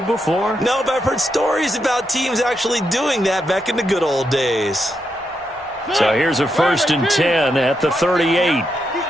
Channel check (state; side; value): normal; both; correlation 0.83